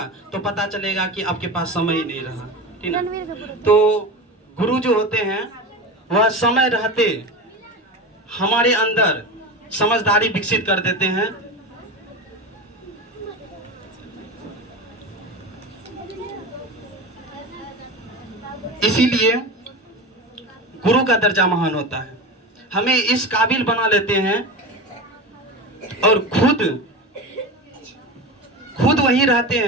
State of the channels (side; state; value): both; normal; correlation 0.26